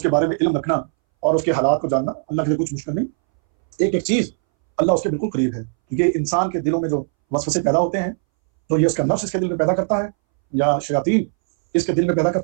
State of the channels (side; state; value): left; silent; 64 dB below the other